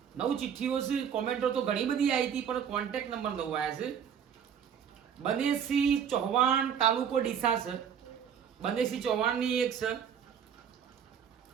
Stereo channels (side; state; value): left; quieter; 8.1 dB